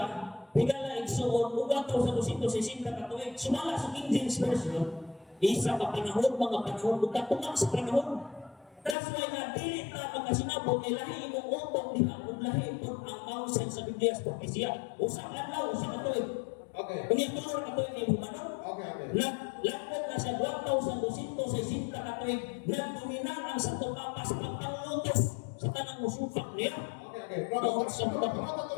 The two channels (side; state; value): right; drops out; at 9.0 s